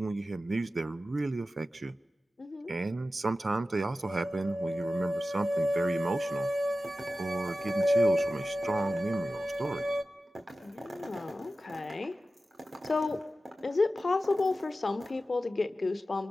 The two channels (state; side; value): normal; both; correlation 0.94